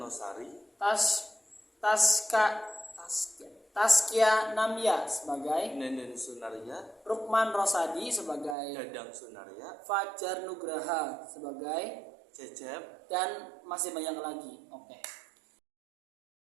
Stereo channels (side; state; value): left; drops out; at 8.6 s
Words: Taskia Namya sebagai Nenden Sunaria, Rukman Rosadi sebagai Dadang Sunaria, Fajar Nugraha sebagai Cecep, dan masih banyak lagi. Oke.